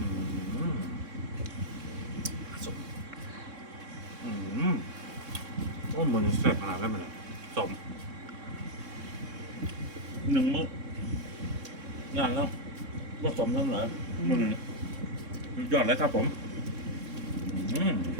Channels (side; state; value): left; late; 3.6 ms